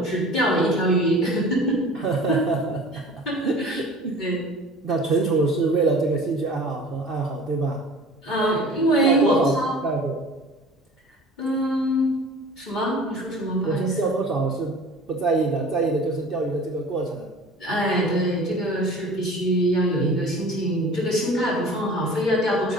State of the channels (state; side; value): normal; both; correlation 0.43